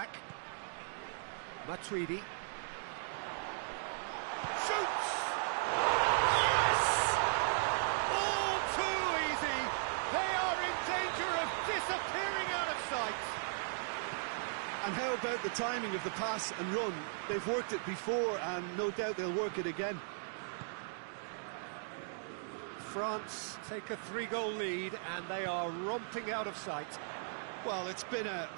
Matuidi. Shoots! Yes! All too easy. They are in danger of disappearing out of sight. And how about the timing of the pass and run? They've worked it before and no doubt they'll work it again. France take a 3-goal lead and they are romping out of sight. Well, it's been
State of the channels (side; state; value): left; silent; digital silence